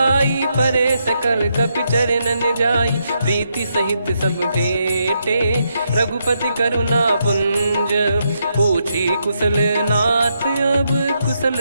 परे सकल कपि चरणन जाई। प्रीति सहित सब भेटे, रघुपति करुणा पुंज। पूछी कुशल नाथ अब,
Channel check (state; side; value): inverted; both; correlation -0.80